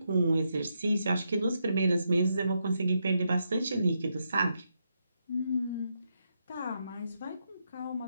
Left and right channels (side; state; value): both; inverted; correlation -0.81